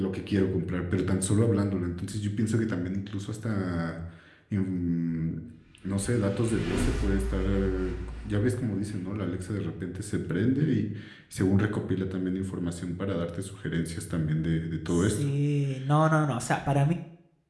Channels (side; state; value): both; identical; correlation 1.00